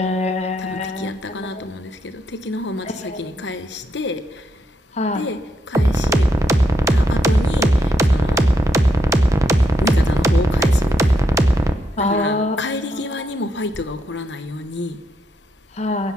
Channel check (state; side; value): normal; both; correlation 0.79